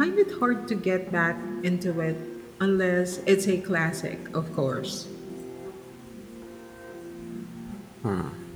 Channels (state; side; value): identical; both; correlation 1.00